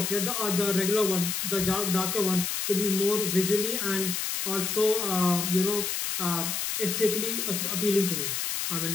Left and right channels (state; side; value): noise; left; hiss, 1 dB below the sound